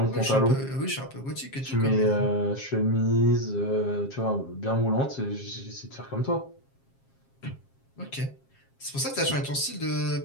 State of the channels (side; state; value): right; late; 7.4 ms